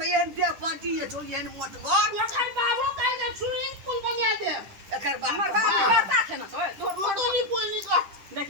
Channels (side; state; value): left; late; 10 ms